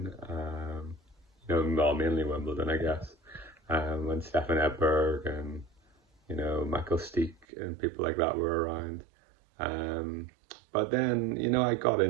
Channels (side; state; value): left; drops out; at 7.5 s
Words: Well, mainly Wimbledon, I guess. When Stefan Edberg and Michael Steek and people like that were around. Um, but then I got